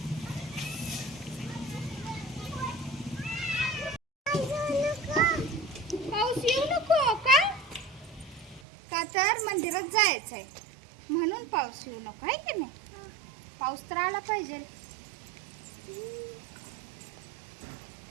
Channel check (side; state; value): left; drops out; at 8.6 s